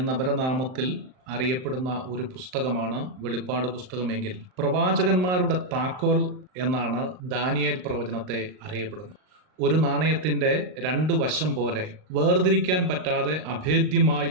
അപരനാമത്തിൽ അറിയപ്പെടുന്ന ഒരു പുസ്തകമാണ് വെളിപ്പാട് പുസ്തകമെങ്കിൽ പ്രവാചകന്മാരുടെ താക്കോൽ എന്നാണ് ദാനിയേൽ പ്രവചനത്തെ അറിയപ്പെടുന്നത്. ഒരു നാണയത്തിൻ്റെ രണ്ട് വശം പോലെ വേർതിരിക്കാൻ പറ്റാതെ അഭേദ്യമായി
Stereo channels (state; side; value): late; left; 39 ms